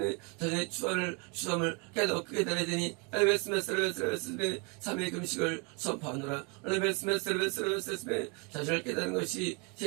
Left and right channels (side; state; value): left; quieter; 32.4 dB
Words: 자신의 추함을 깨닫게 되니 삼위의 금식을 선포하노라. 자신을 깨닫는 것이